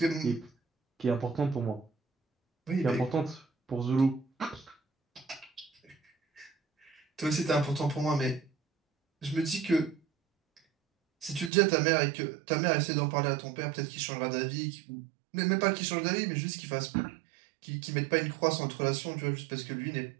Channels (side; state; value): left; drops out; at 11.5 s